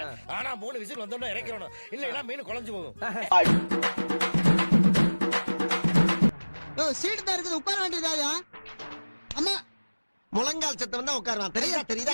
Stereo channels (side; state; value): both; inverted; correlation -1.00